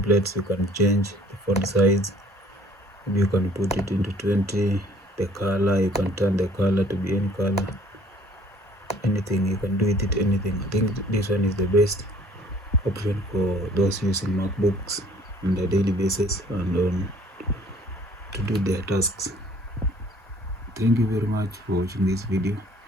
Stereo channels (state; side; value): normal; both; correlation 0.56